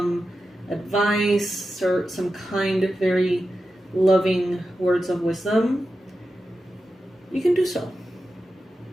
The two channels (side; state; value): both; normal; correlation 0.91